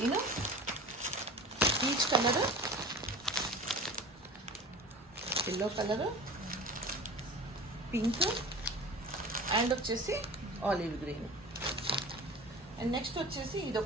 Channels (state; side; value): normal; both; correlation 0.37